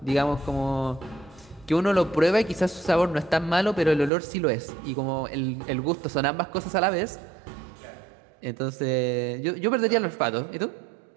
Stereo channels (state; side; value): drops out; left; at 4.1 s